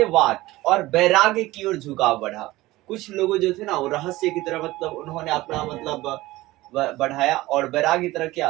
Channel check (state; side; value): quieter; left; 18.3 dB